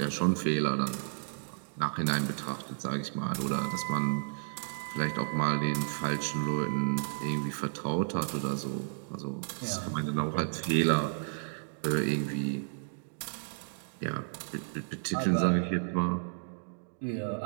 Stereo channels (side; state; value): left; silent; digital silence